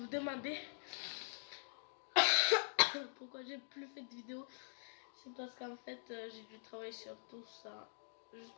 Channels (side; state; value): right; silent; digital silence